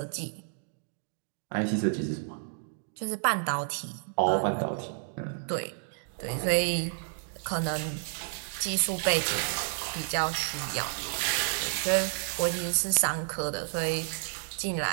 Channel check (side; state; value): left; silent; digital silence